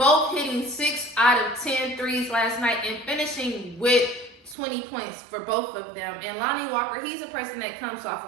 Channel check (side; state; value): left; drops out; at 4.5 s